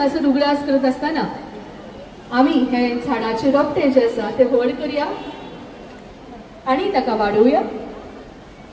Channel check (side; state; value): both; identical; correlation 1.00